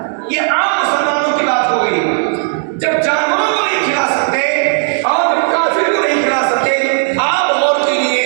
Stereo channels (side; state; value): left; silent; digital silence